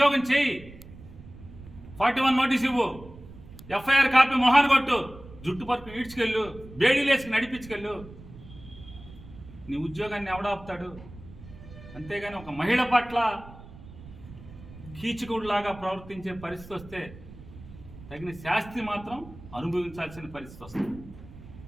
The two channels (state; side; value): noise; right; rumble, 17 dB below the sound